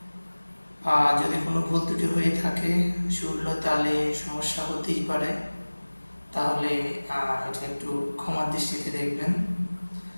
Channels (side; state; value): both; inverted; correlation -1.00